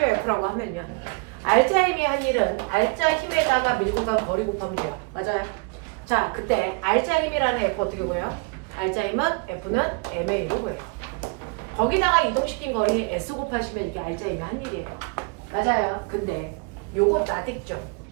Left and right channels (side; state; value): left; quieter; 29.5 dB